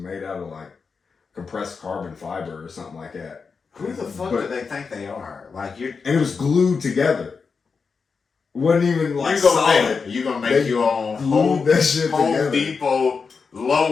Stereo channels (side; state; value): right; quieter; 5.2 dB